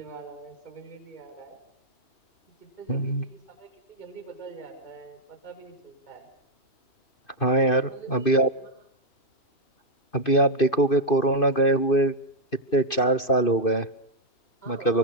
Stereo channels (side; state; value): right; late; 2.5 ms